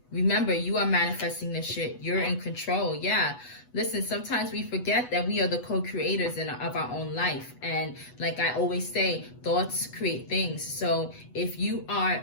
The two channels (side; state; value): right; late; 8.1 ms